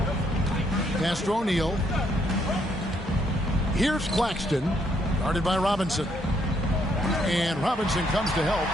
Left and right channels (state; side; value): normal; both; correlation 0.72